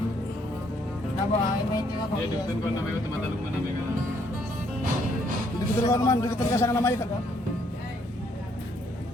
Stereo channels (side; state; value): both; normal; correlation 0.69